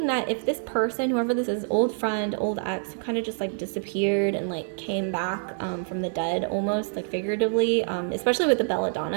that if this person, whoever this is, old friend, old ex, who kind of just like disappeared and like came back from the dead, almost like figuratively, especially with the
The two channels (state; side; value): silent; left; 61 dB below the other